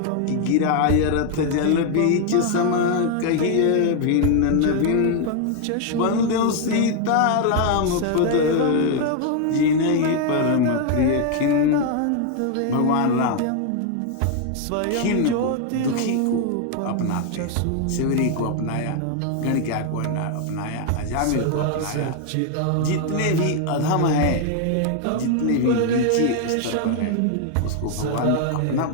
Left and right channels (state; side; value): different; both; correlation 0.00